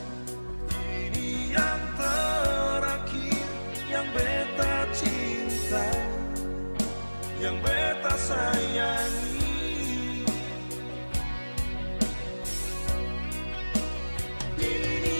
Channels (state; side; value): inverted; both; correlation -1.00